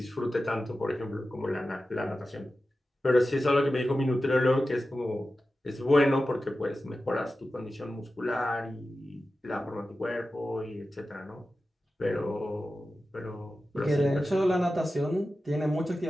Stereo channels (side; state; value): both; normal; correlation 0.93